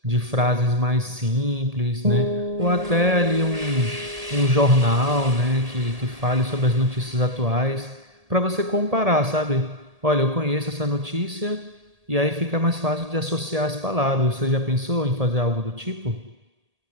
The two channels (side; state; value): left; late; 1.8 ms